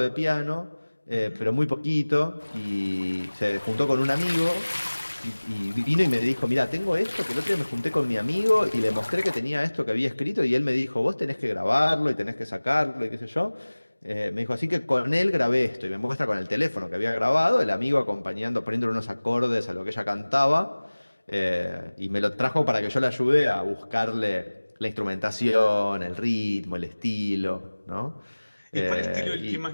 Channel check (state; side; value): inverted; both; correlation -1.00